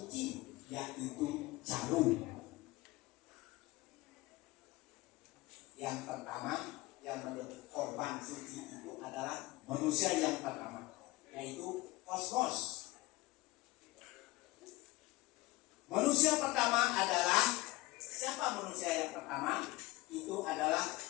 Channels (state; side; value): quieter; right; 21.1 dB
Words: yaitu jarum. Yang pertama yang menjadi korban suci itu adalah manusia yang pertama, yaitu kosmos. Manusia pertama adalah siapa? Manusia yang pertama itu adalah